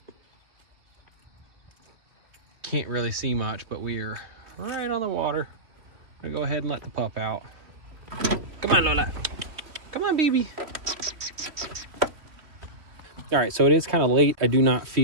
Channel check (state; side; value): late; left; 3.2 ms